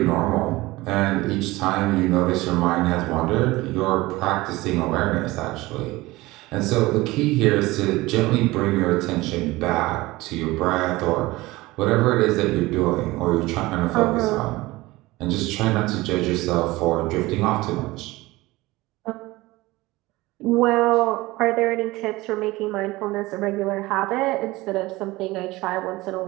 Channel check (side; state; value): left; quieter; 20.0 dB